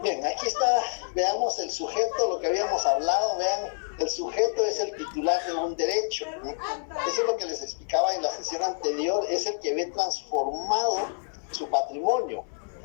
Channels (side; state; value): right; silent; 60 dB below the other